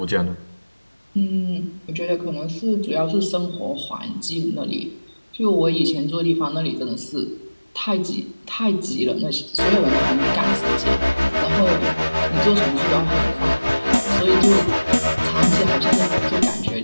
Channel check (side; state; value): both; inverted; correlation -1.00